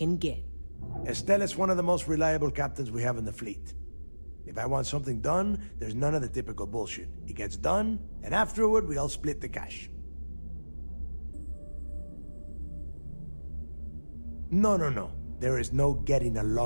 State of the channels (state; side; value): inverted; both; correlation -1.00